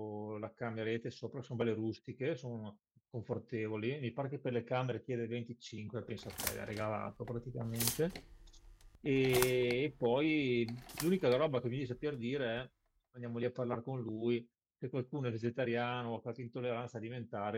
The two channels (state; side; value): identical; both; correlation 1.00